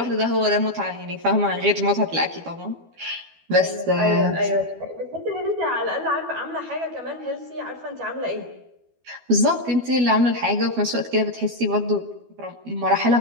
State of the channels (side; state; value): left; late; 12 ms